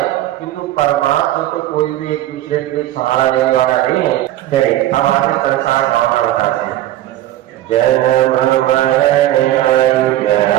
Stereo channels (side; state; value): left; quieter; 14.2 dB